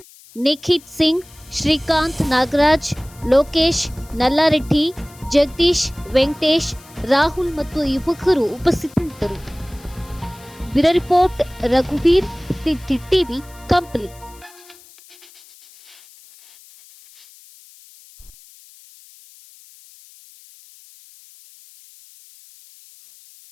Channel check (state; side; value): noise; left; hiss, 24 dB below the sound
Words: ನಿಖಿತ್ ಸಿಂಗ್, ಶ್ರೀಕಾಂತ್, ನಾಗರಾಜ್, ಲೋಕೇಶ್, ನಲ್ಲಾರೆಡ್ಡಿ, ಜಗದೀಶ್, ವೆಂಕಟೇಶ್, ರಾಹುಲ್ ಮತ್ತು ಯುವಕರು ಉಪಸ್ಥಿತರಿದ್ದರು. ಬ್ಯೂರೋ ರಿಪೋರ್ಟ್ ರಘುವೀರ್, ಸಿಟಿ ಟಿವಿ, ಕಂಪ್ಲಿ.